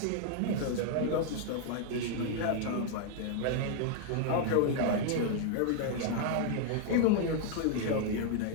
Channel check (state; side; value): different; both; correlation 0.00